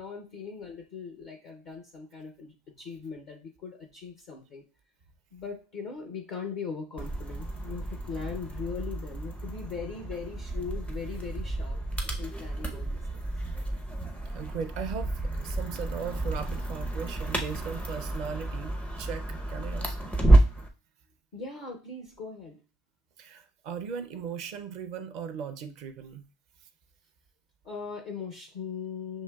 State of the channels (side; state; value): both; normal; correlation 0.81